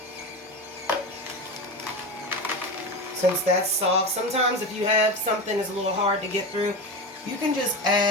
since that's soft. Sometimes if you have something that's a little hard to get through, you can just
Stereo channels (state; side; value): normal; both; correlation 0.23